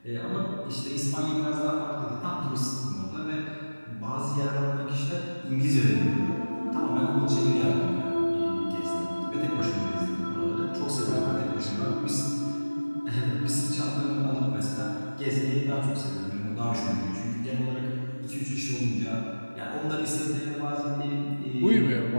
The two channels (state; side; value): inverted; both; correlation -1.00